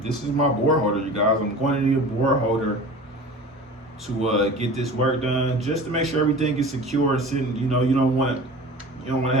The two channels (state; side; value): normal; both; correlation 0.37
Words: This is my board holder, you guys. I'm going to need a board holder to get this work done, just to make sure everything is secure. Sitting, you know, you don't want to